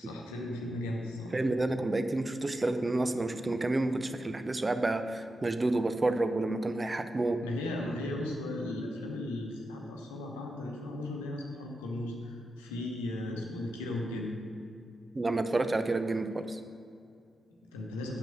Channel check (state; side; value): normal; both; correlation 0.89